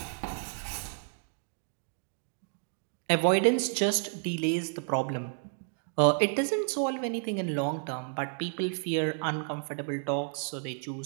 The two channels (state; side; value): silent; left; 57 dB below the other